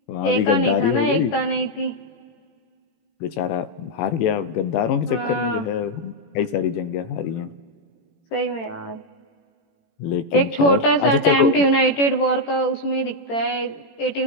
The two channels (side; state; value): right; late; 18 ms